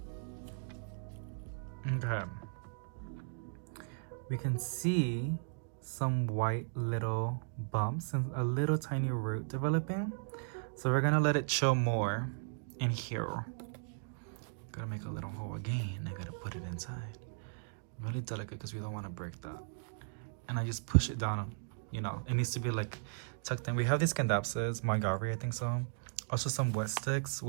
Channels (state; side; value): silent; left; digital silence